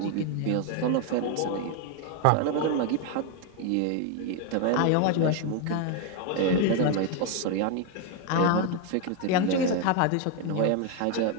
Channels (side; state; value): both; different; correlation 0.01